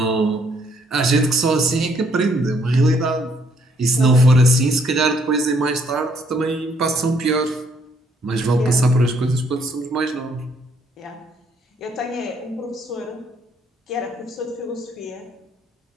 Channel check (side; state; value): both; normal; correlation 0.67